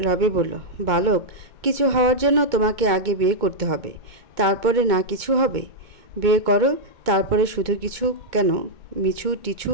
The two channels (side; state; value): left; late; 2.2 ms